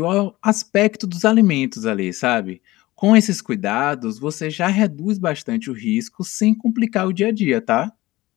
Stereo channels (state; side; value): quieter; right; 18.6 dB